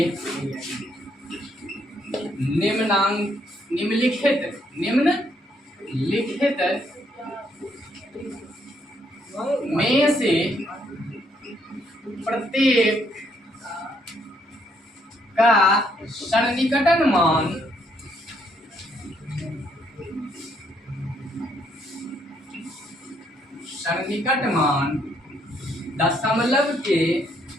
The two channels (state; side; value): normal; both; correlation 0.71